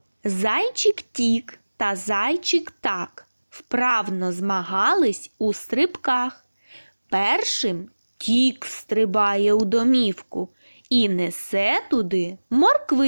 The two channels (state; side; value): inverted; both; correlation -1.00